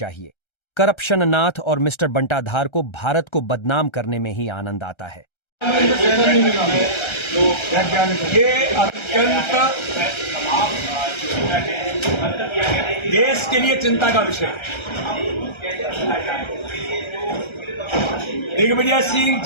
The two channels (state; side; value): late; right; 1.3 ms